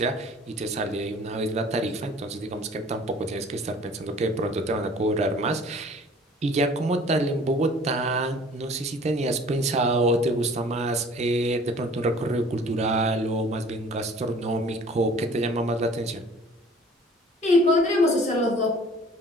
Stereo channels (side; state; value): both; normal; correlation 0.50